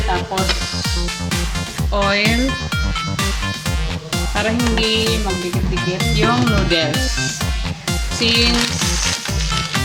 Tapos, oil. Para hindi magdikit-dikit yung noodles. Since,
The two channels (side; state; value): both; identical; correlation 1.00